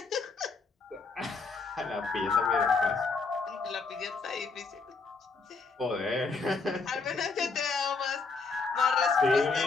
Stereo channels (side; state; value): right; quieter; 4.4 dB